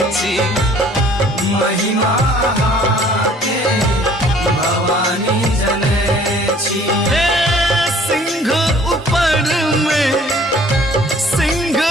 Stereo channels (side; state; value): both; normal; correlation 0.55